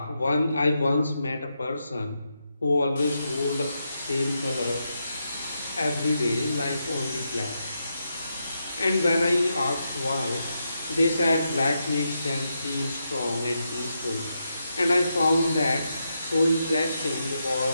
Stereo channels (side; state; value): both; inverted; correlation -0.84